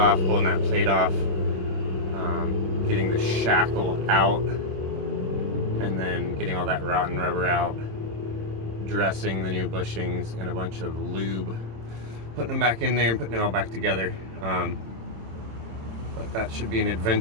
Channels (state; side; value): late; left; 26 ms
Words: pulling that plate off, getting the shackle out, and then getting all that rotten rubber out, dressing the new bushings in a bunch of lube, putting them back in there and putting it all back together. But that should be an